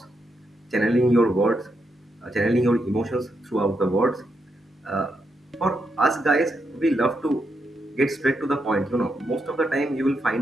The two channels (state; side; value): normal; both; correlation 0.82